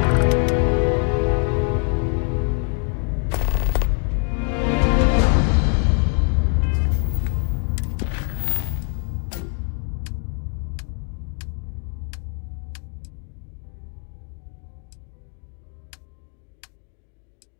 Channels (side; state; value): right; quieter; 39.4 dB